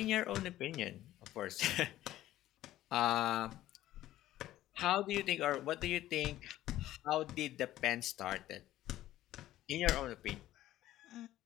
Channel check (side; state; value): right; quieter; 14.3 dB